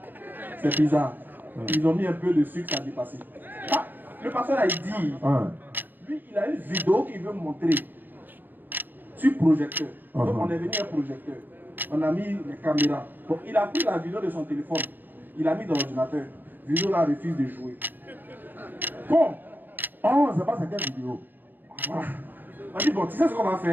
C'est bizarre. Ils ont mis un peu de sucre, ça a dépassé. Ah, le pasteur a dit, lui il a une vidéo qu'il veut montrer sur projecteur. Donc on est venu un projecteur. On a mis les caméras. Donc il a pris la vidéo de son téléphone. Il a mis dans l'ordinateur. Vidéo là refuse de jouer. Bon. Oh, c'est pas sa quelle vidéo. Voilà. On dit bon, tu sais ce qu'on va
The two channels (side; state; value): left; late; 0.089 ms